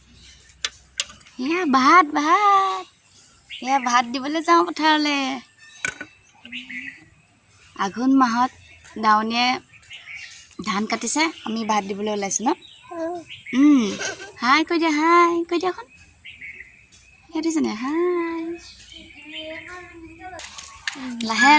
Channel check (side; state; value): both; identical; correlation 1.00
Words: ভাত দিবলৈ যাওঁ পথাৰলৈ। আঘোণ মাহত দাৱনীয়ে ধান কাটিছে, আমি ভাত দিবলৈ ওলাইছোঁ ন। হাই কৈ দিয়া, হাই কৈ দিয়া এখন দিছেনে। হাই লাহে